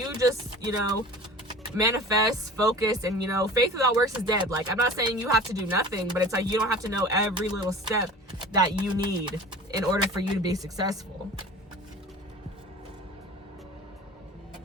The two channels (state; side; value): normal; both; correlation 0.40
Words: just, you know, manifest, focus, and, you know, faith without works is dead. Like, I'm not saying you have to do nothing, but it's like you don't have to know every little step that you need in order for you to be successful.